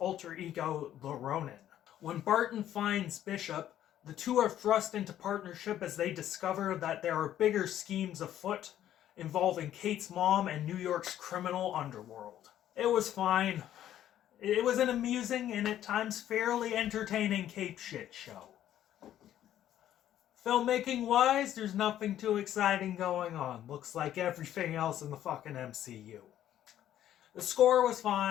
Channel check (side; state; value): right; quieter; 11.7 dB